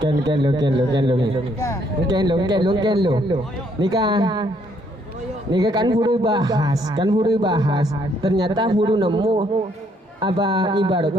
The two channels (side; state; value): both; normal; correlation 0.69